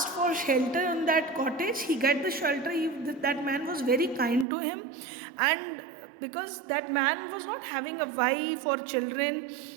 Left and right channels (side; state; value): left; drops out; at 4.5 s